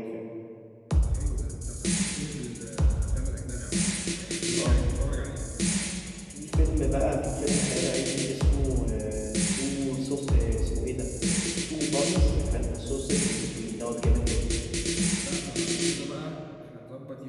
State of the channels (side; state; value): both; identical; correlation 1.00